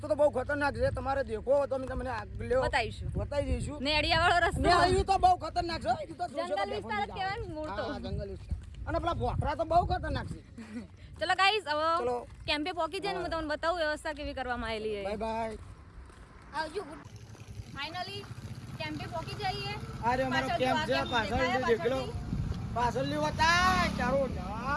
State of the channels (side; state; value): both; identical; correlation 1.00